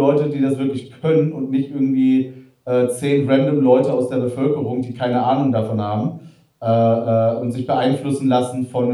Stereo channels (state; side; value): identical; both; correlation 1.00